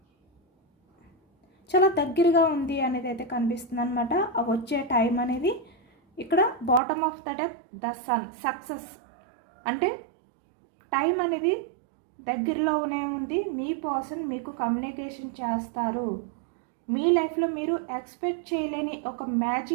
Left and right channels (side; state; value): left; drops out; at 6.8 s